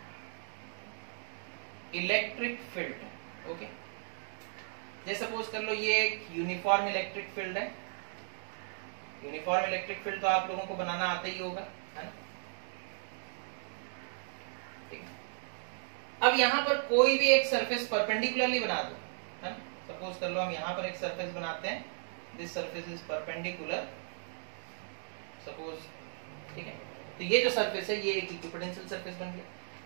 electric field. Okay, जैसे सपोज कर लो ये एक यूनिफॉर्म इलेक्ट्रिक फील्ड है। यूनिफॉर्म इलेक्ट्रिक फील्ड तो आप लोगों को बनाना आता ही होगा, है ना। ठीक है, अब यहां पर कोई भी एक सरफेस परपेंडिकुलरली बना दो, है ना। सपोज कर लो हम यहां पर एक सरफेस बनाते हैं, this surface is perpendicular suppose. ठीक है, तो ये जो सरफेस है ये एक इक्विपोटेंशियल सरफेस बन गया।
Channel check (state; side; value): silent; left; 54 dB below the other